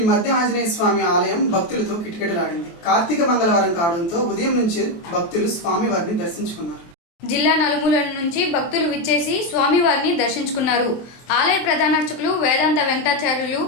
మధ్య ఆంజనేయ స్వామి ఆలయం భక్తులతో కిటకిటలాడింది. కార్తీక మంగళవారం కావడంతో ఉదయం నుంచి భక్తులు స్వామివారిని దర్శించుకున్నారు. జిల్లా నలుమూలల నుంచి భక్తులు విచ్చేసి స్వామివారిని దర్శించుకున్నారు. ఆలయ ప్రధాన అర్చకులు వేదాంత వెంకటాచార్యులు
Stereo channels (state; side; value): late; right; 24 ms